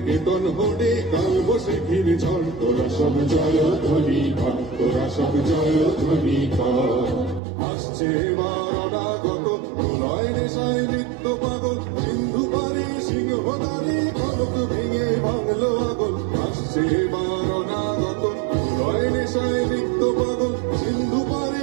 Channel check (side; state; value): left; drops out; at 7.4 s